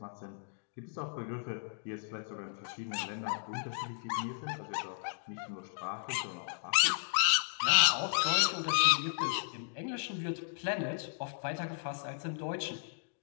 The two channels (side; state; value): right; silent; digital silence